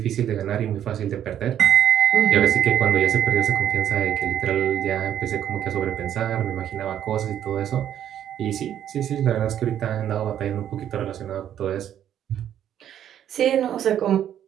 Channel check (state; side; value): quieter; left; 10.4 dB